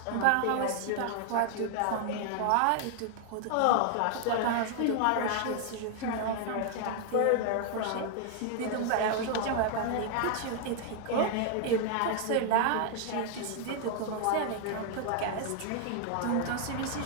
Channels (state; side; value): different; both; correlation 0.00